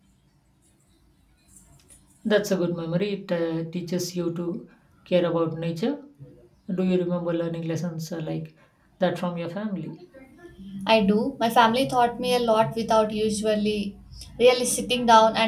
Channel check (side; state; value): both; identical; correlation 1.00